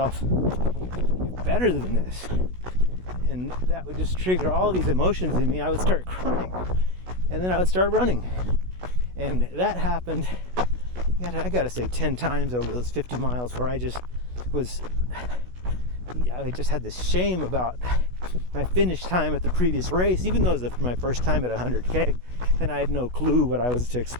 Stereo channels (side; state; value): left; late; 16 ms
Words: you're better than this. And that would just trigger all these emotions in me. I would start crying, and then I would start running. And that happened, I gotta say, 10 times over those 50 miles, where I just had this shame about my finish time at the previous race, even though it was my first time at 100K, and I had no clue what I was to